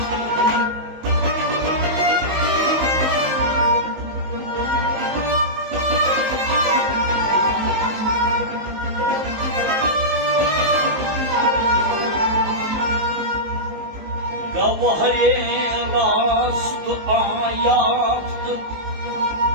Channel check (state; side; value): late; left; 19 ms